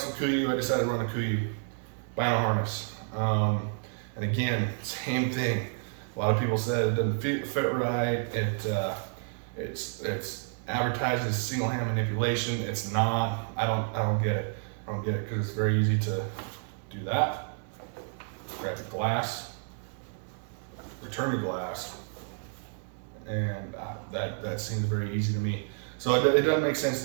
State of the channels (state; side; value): silent; left; 55 dB below the other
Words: with Kuiu, I decided to run a Kuiu vinyl harness. And again, same thing. A lot of people said it doesn't fit right. It's advertised as single hand manipulation. It's not. I don't get it. I don't get it because it's very easy to do that. Grab the glass, return the glass, and that seems very easy to me. So it doesn't make sense